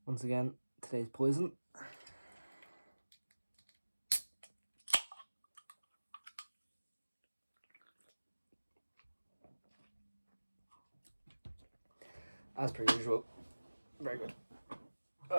Once again, today's poison. As per usual. Very good.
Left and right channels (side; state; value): both; inverted; correlation -1.00